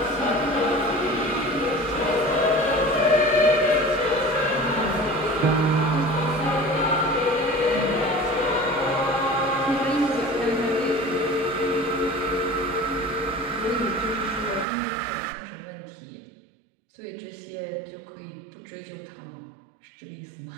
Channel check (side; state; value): left; drops out; at 14.7 s